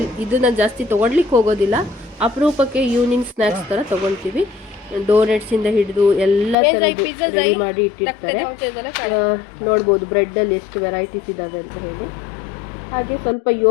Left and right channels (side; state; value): right; drops out; at 6.6 s